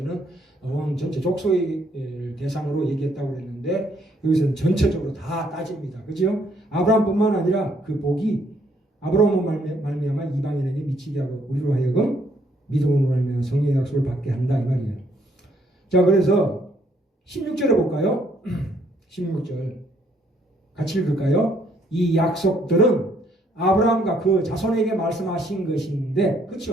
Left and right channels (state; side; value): normal; both; correlation 0.68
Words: 온 전체 족속의 대상으로 얘기했다고 했는데 여기서는 전체적으로 다 따집니다. 그죠? 아브라함뿐만 아니라 그 복이 아브라함으로 말미암아 이방인에게 미치게 하고 우리로 하여금 믿음으로 말미암아 성령의 약속을 받게 한다 이 말이에요. 자, 그래서 16절에 볼까요? 16절 같이 읽을까요? 이 약속들은 아브라함과 그 자손에게 말씀하신 것인데,